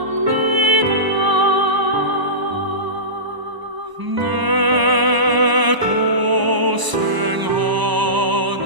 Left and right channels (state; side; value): late; left; 1.0 ms